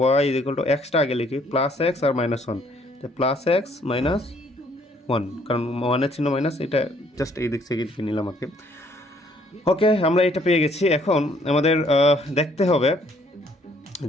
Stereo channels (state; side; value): normal; both; correlation 0.64